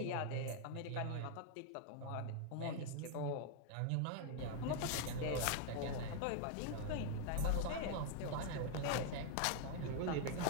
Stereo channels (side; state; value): both; different; correlation 0.00